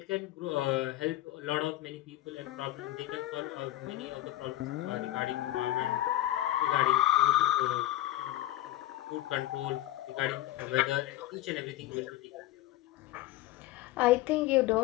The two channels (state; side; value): quieter; right; 15.0 dB